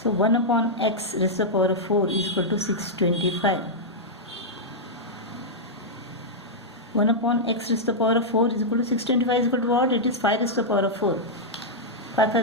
So 1 upon x raised to the power of 4 is equal to 625. 1 upon x raised to the power of 4 is equal to 625 is equal to what? It is 5 raised to the power of 4. 5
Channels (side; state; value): both; normal; correlation -0.07